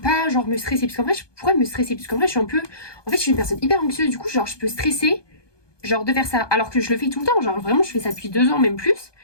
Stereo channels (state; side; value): late; right; 1.2 ms